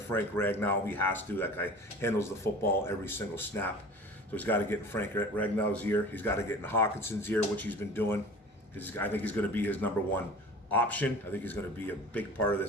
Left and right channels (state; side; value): normal; both; correlation 0.41